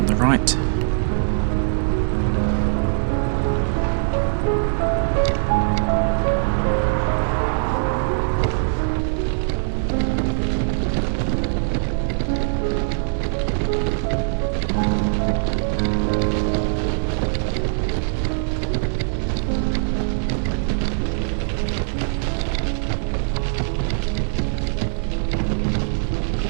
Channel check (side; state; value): left; silent; digital silence